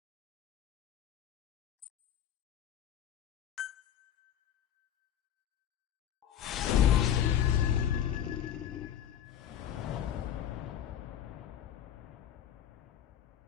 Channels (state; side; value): quieter; right; 10.2 dB